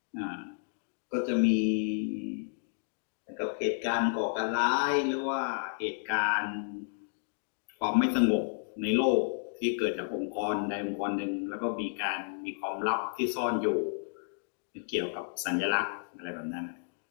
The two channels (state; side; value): silent; right; digital silence